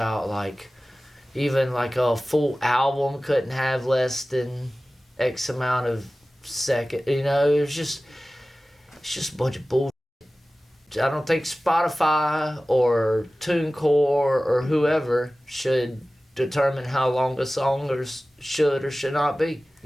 like even like a full album couldn't have less than X amount of second. It's just a bunch of bullshit. I don't think Spotify or TuneCore or whoever should determine how long a song should or should not be.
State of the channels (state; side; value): normal; both; correlation 0.97